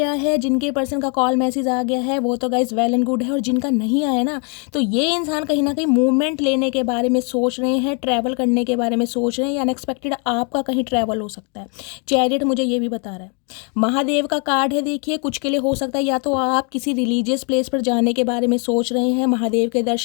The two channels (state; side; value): quieter; right; 36.9 dB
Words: है, जिनके पर्सन का कॉल मैसेज आ गया है, वो तो गाइस वेल एंड गुड है, और जिनका नहीं आया ना, तो ये इंसान कहीं ना कहीं मूवमेंट लेने के बारे में सोच रहे हैं, ट्रैवल करने के बारे में सोच रहे हैं, या अनएक्सपेक्टेड आपका कहीं ट्रैवल हो सकता है। चैरियट मुझे ये भी बता रहा है। महादेव का कार्ड है, देखिए कुछ के लिए हो सकता है या तो आप किसी रिलीजियस प्लेस पर जाने के बारे में सोच रहे हैं, महादेव के